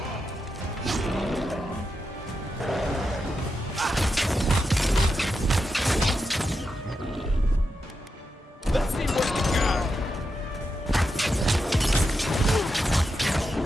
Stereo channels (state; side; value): normal; both; correlation 0.87